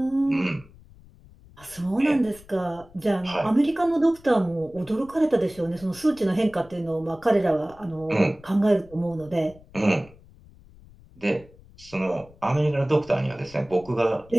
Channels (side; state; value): left; noise; rumble, 24 dB below the sound